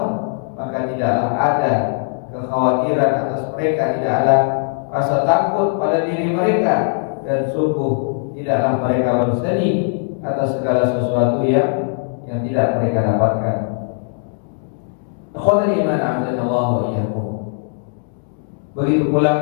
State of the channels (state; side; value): silent; right; digital silence